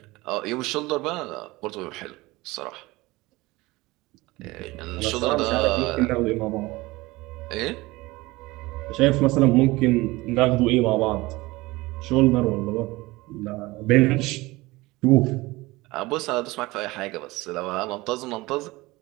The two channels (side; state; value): left; quieter; 21.0 dB